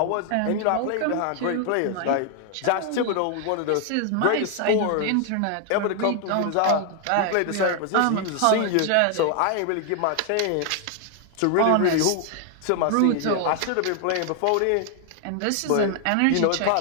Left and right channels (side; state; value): both; different; correlation 0.00